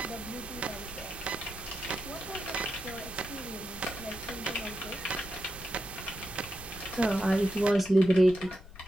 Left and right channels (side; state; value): left; noise; rumble, 17 dB below the sound